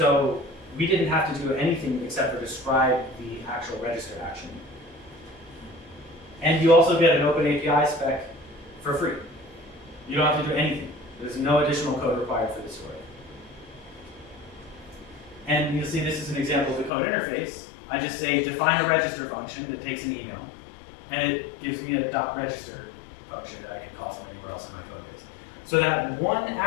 we didn't have to do anything except for describe the actual register action. And you also get an open API spec for free. You don't have to do anything. There's no additional code required for this work. And you'll see this is an example of the code interface. I just say define a register function that takes an email, and it gives me a .register function that I can call from anywhere else in my code base. So that one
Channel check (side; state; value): right; drops out; at 16.9 s